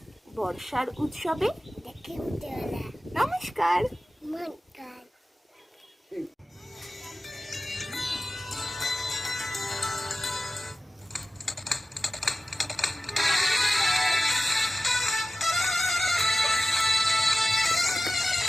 বর্ষার উৎসবে নমস্কার।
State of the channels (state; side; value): normal; both; correlation 0.95